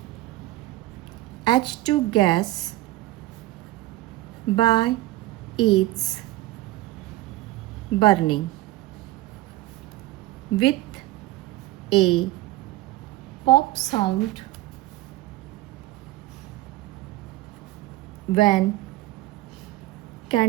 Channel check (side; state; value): left; quieter; 17.3 dB